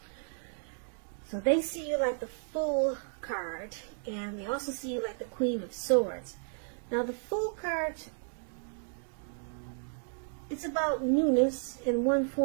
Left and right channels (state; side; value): silent; left; 56 dB below the other